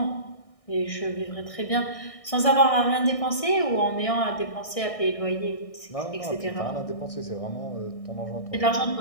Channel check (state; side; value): late; right; 1.6 ms